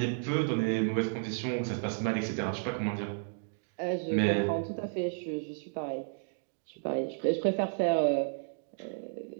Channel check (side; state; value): left; silent; digital silence